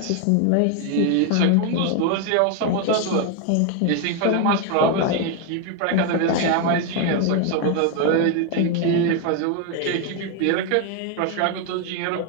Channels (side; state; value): both; different; correlation 0.01